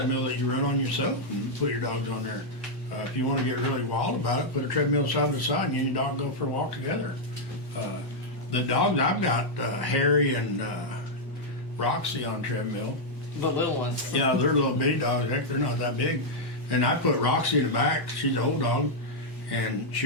that you run on yourself and put your dogs on there. If you want to get really wild about it, put a treadmill side by side and you and your dog go for a walk together. The dogs, I've got Harry and Roxy on treadmill. The little ones. Yeah, they're little bitty dogs. Heck, they're not that big. And I put Roxy in the back. She's an old dog. And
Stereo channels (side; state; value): both; normal; correlation -0.03